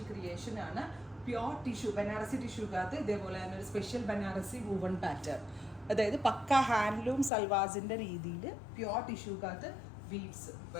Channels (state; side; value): drops out; right; at 7.3 s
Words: ക്രിയേഷൻ ആണ്. പ്യുവർ ടിഷ്യൂ ബനാറസി ടിഷ്യൂക്കകത്ത് ഇതേപോലെ തന്നെ ഒരു സ്പെഷ്യൽ ബനാറസി വൂവൺ പാറ്റേൺ, അതായത് പക്ക ഹാൻഡ്ലൂം സൽവാസിന്റെ രീതിയിൽ പ്യുവർ ടിഷ്യൂക്കകത്ത് വീവ്സ്